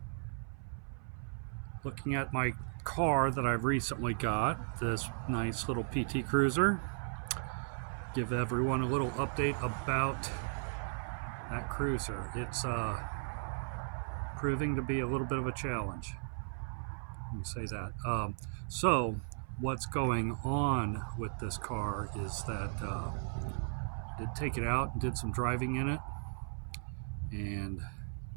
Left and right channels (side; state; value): left; silent; 54 dB below the other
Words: looking at my car that I've recently got, this nice little PT Cruiser. Give everyone a little update about that cruiser. It's proving to be a little bit of a challenge. Let me say that. So what's going on with this car is that I did take it out and did some driving in it, and